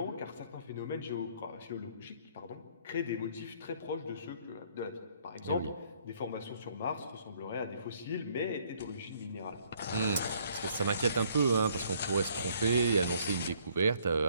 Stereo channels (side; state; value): both; inverted; correlation -0.63